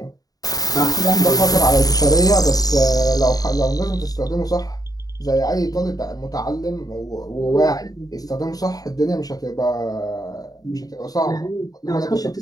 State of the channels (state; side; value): late; right; 0.18 ms